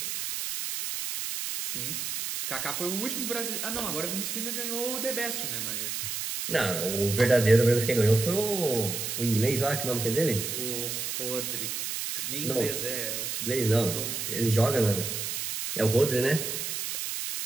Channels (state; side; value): noise; right; hiss, 3 dB below the sound